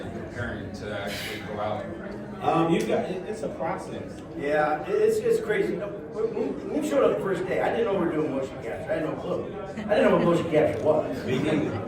preparing to actually go out? It's a process. Yeah, it's crazy. When we showed up the first day, I didn't know we were doing motion capture. I had no clue. I didn't know what motion capture was. Me neither.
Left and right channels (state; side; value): identical; both; correlation 1.00